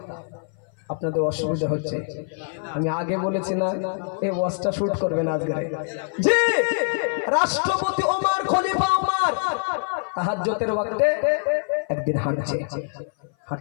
আপনাদের অসুবিধা হচ্ছে, আমি আগে বলেছি না এই ওয়াজটা শুট করবেন আজকে। জি, রাষ্ট্রপতি ওমর, খলিফা ওমর তাহাজ্জুদের ওয়াক্তে একদিন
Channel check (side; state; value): right; silent; 57 dB below the other